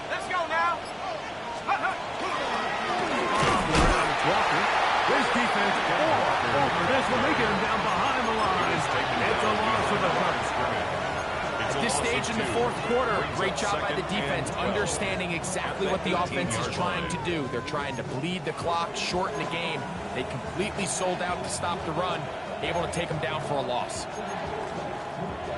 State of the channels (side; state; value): both; identical; correlation 1.00